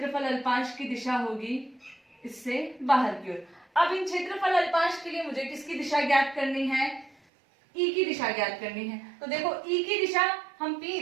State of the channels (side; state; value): left; drops out; at 7.2 s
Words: अल्पांश की दिशा होगी इससे बाहर की ओर। अब इन क्षेत्रफल अल्पांश के लिए मुझे किसकी दिशा ज्ञात करनी है, E की दिशा ज्ञात करनी है। तो देखो E की दिशा हम P